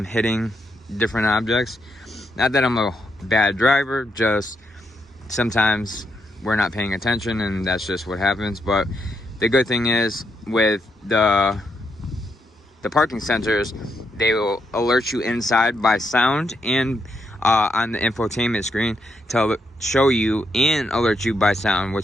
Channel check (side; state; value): both; normal; correlation 0.79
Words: hitting different objects. Not that I'm a bad driver, just sometimes we're not paying attention and that's just what happens. But the good thing is with the parking sensors, they will alert you inside by sound and on the infotainment screen to show you and alert you by sound,